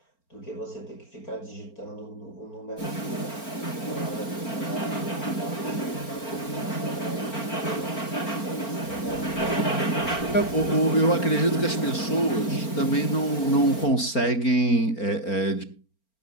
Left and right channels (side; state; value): right; late; 4.4 ms